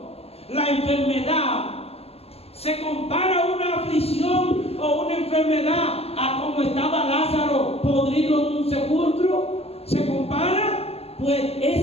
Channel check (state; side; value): late; right; 0.29 ms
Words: la enfermedad, ¿Se compara una aflicción o una enfermedad a como estaba Lázaro podrido en un sepulcro? ¿Se compara? Pues